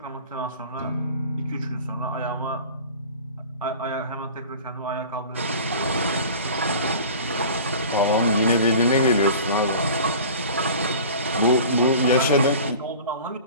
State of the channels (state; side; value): inverted; both; correlation -0.40